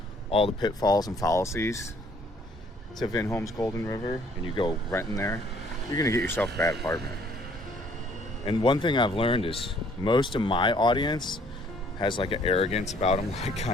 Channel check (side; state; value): both; normal; correlation 0.61